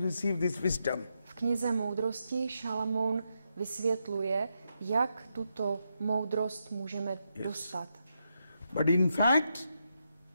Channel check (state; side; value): inverted; both; correlation -0.83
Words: this wisdom. V knize moudrosti Šalamoun vysvětluje, jak tuto moudrost můžeme dostat. But in fact,